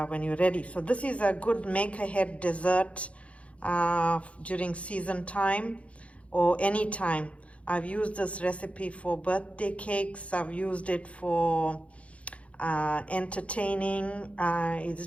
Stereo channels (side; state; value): right; late; 0.063 ms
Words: when you're ready. So this is a good make-ahead dessert during season time or any time. I've used this recipe for birthday cakes. I've used it for entertaining. It's